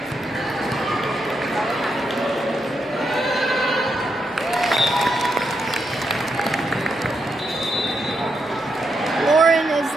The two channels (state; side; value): normal; both; correlation 0.81